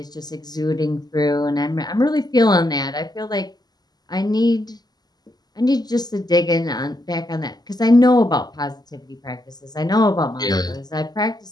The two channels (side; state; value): right; late; 0.20 ms